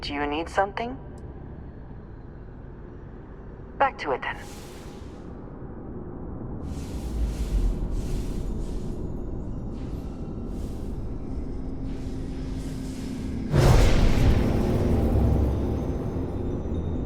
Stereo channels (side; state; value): both; identical; correlation 1.00